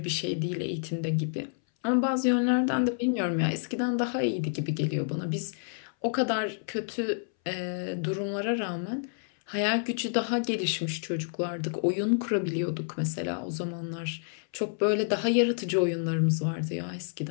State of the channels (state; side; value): silent; right; 59 dB below the other